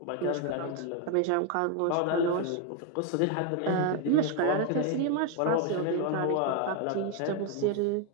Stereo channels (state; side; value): different; both; correlation 0.01